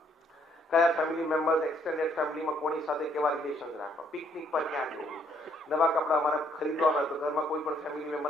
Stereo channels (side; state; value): both; normal; correlation 0.67